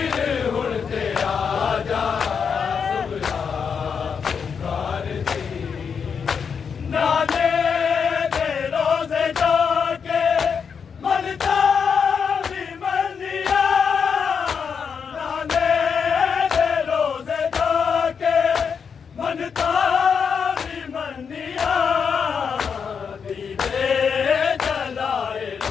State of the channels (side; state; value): right; quieter; 6.4 dB